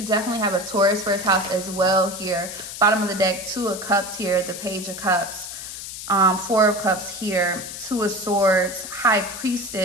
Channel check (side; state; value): left; noise; hiss, 9 dB below the sound